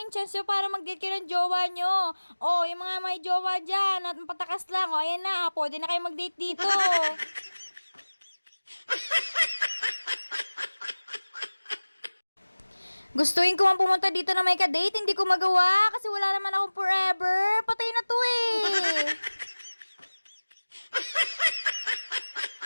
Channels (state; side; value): inverted; both; correlation -1.00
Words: yung chance nyo para mag-date kayo ng jowa nyo. Oh, yung mga may jowa dyan, at patakas lang. O, ayan na, pwede na kayo mag-date dito. Gustuin ko man pumunta dito na may ka-date, hindi ko magawa kasi wala naman akong forever. Patay na to eh.